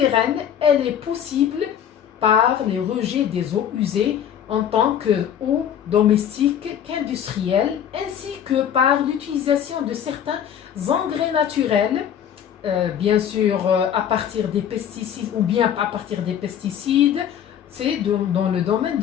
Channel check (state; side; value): quieter; right; 9.3 dB